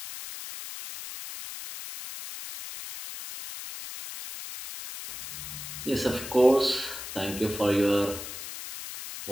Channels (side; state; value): left; noise; hiss, 10 dB below the sound